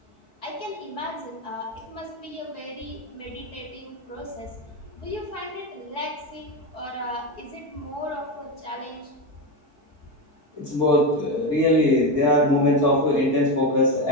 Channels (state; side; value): late; right; 4.6 ms